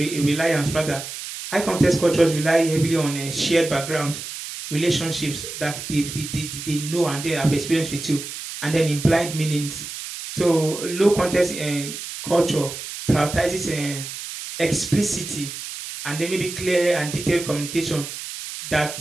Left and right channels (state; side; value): noise; right; hiss, 9 dB below the sound